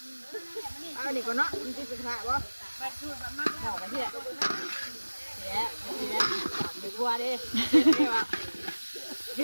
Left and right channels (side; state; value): both; inverted; correlation -1.00